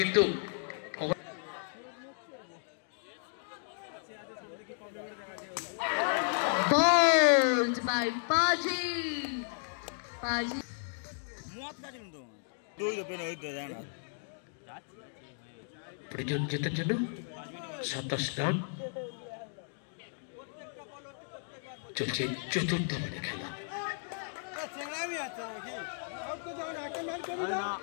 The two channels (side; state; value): right; silent; digital silence